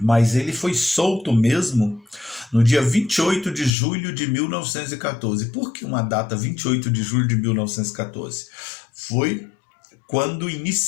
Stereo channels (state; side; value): drops out; right; at 3.7 s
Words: ele foi solto mesmo no dia 28 de julho de 1914. Por que uma data 28 de julho de 1914? Foi quando